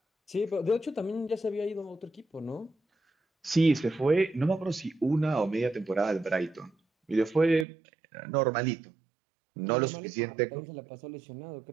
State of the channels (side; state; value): left; drops out; at 7.7 s